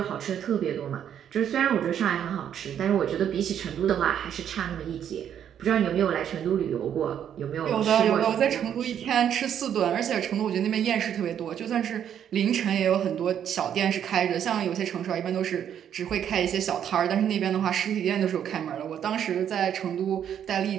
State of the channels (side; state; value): left; quieter; 9.3 dB